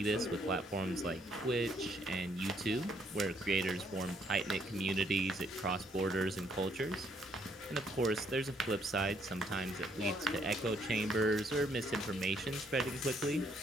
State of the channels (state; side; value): normal; both; correlation 0.70